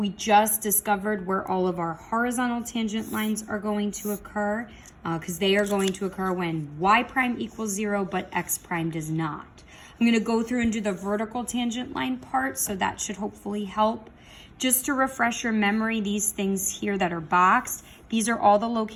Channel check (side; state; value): both; identical; correlation 1.00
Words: just discovered where all of our horizontal tangent lines are going to occur because they are going to occur when y prime equals 0, but x prime does not. I'm going to go through and do the vertical tangent line part, so that should hopefully help. Just to refresh your memory, these things here that are boxed, these are all the